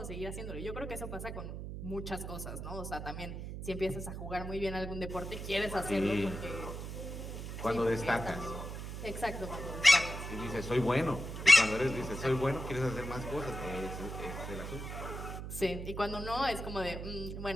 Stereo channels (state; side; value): noise; right; hum, 7 dB below the sound